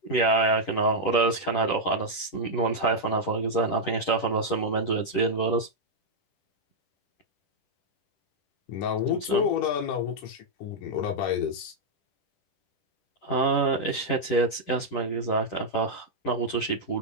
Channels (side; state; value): right; late; 10 ms